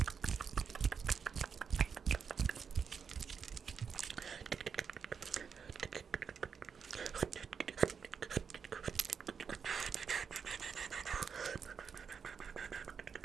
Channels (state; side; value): quieter; left; 6.4 dB